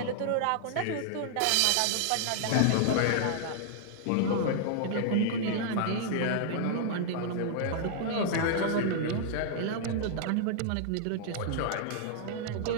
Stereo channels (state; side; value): different; both; correlation -0.01